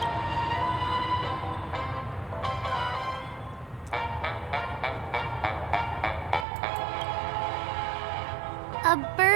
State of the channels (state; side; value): drops out; left; at 6.5 s